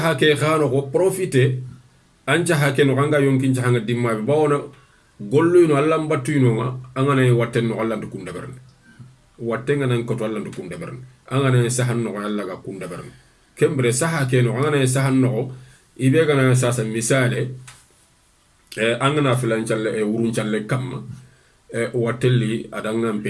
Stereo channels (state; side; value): identical; both; correlation 1.00